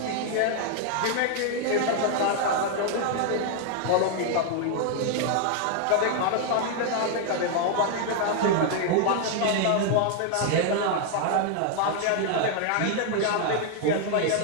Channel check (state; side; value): different; both; correlation 0.00